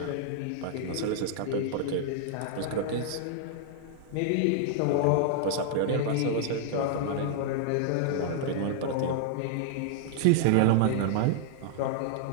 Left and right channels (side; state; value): both; different; correlation -0.01